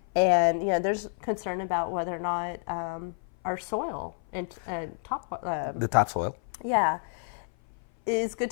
And there's concern about whether or not our soil and the topsoil, is good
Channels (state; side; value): silent; right; 56 dB below the other